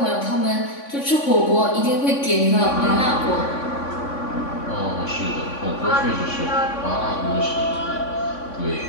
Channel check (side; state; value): right; late; 3.5 ms